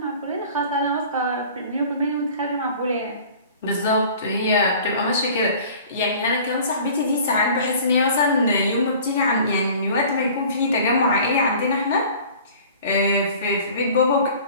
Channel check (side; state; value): both; inverted; correlation -0.46